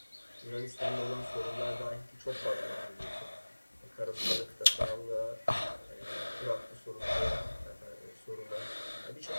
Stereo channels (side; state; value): both; inverted; correlation -1.00